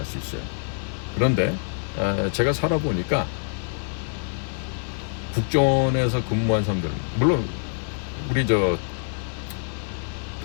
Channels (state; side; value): silent; right; 60 dB below the other